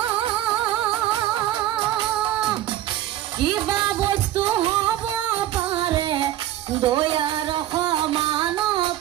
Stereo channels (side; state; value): left; quieter; 13.3 dB